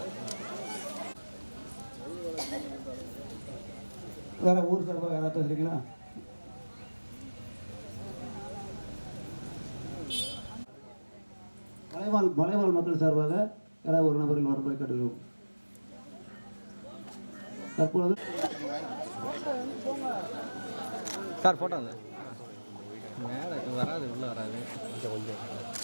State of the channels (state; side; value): inverted; both; correlation -1.00